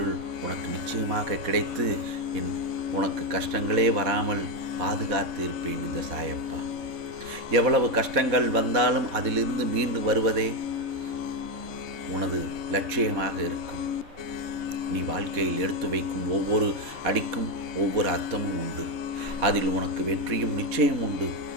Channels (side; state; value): left; late; 4.1 ms